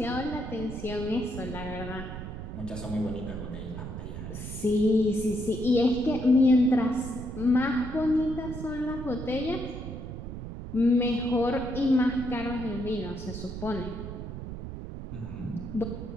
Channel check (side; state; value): right; noise; rumble, 8 dB below the sound